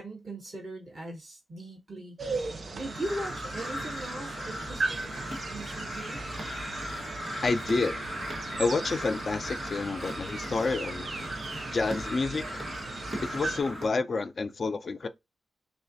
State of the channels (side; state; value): both; normal; correlation 0.90